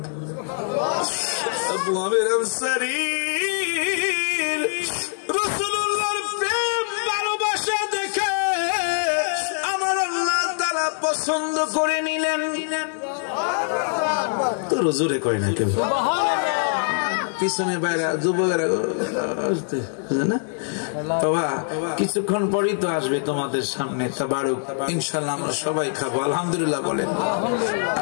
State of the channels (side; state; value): right; silent; 63 dB below the other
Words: আবু আমের আনসারী রাসূলুল্লাহর প্রেম ভালোবাসা দেখে আমার আল্লাহ তাআলা পছন্দ করে নিলেন। তো হুজুরে কয় না কেউ, পিছনে বাইরে যুবকেরা না বাবা, কিছুক্ষণ পরই তো আসবে তোমাদের সামনে তাবারুক, ইনশাআল্লাহ আমরা সবাই খাবো, আলহামদুলিল্লাহ বলেন।